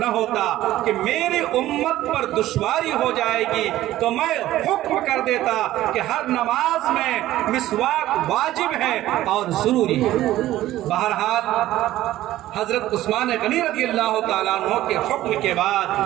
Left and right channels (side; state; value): left; quieter; 14.7 dB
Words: ہوتا کہ میری امت پر دشواری ہو جائے گی تو میں حکم کر دیتا کہ ہر نماز میں مسواک واجب ہے اور ضروری ہے۔ بہرحال حضرت عثمان غنی رضی اللہ تعالیٰ عنہ کے حکم کے